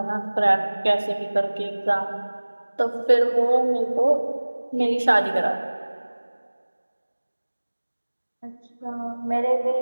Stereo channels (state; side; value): inverted; both; correlation -1.00